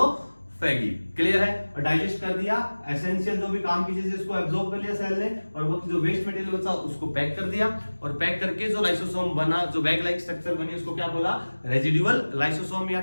फैगी। क्लियर है? और डाइजेस्ट कर दिया, एसेंशियल जो भी काम की चीज इसको एब्जॉर्ब कर लिया सेल ने, और वो जो वेस्ट मटेरियल बचा उसको पैक कर दिया, और पैक करके जो लाइसोसोम बना, जो बैग लाइक स्ट्रक्चर बनी, उसको क्या बोला? रेजिडुअल लाइसोसोम या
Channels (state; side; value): inverted; both; correlation -1.00